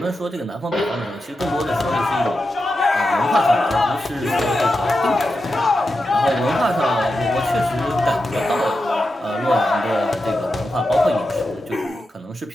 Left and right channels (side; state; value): both; normal; correlation 0.89